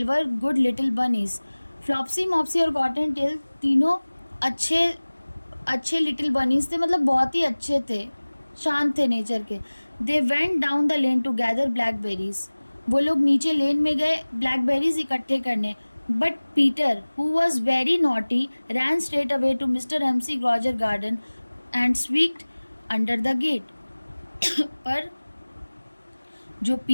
were good little bunnies. Flopsy, Mopsy और कॉटन टेल तीनों अच्छे लिटिल बनीज थे, मतलब बहुत ही अच्छे थे, शांत थे नेचर के। They went down the lane to gather blackberries. वो लोग नीचे लेन में गए ब्लैकबेरीज इकट्ठे करने। But Peter, who was very naughty, ran straight away to mister McGregor garden and squeezed under the gate. पर जो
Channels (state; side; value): inverted; both; correlation -1.00